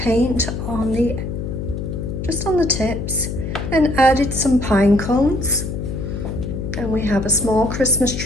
on the, just on the tips, and added some pine cones. And we have a small Christmas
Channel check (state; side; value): noise; left; hum, 5 dB below the sound